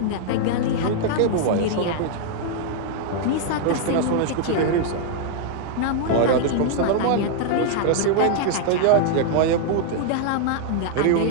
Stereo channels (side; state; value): both; different; correlation -0.01